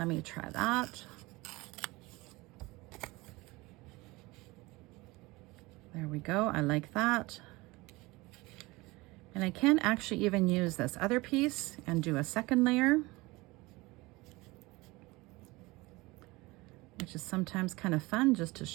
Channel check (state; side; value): quieter; left; 22.2 dB